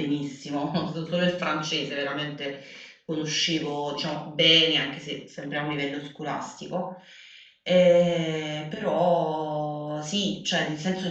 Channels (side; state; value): both; identical; correlation 1.00